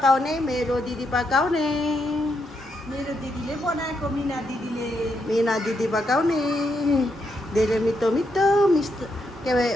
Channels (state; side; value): normal; both; correlation 0.80